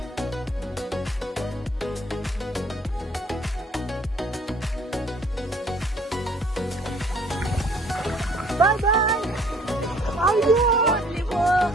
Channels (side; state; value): both; normal; correlation 0.58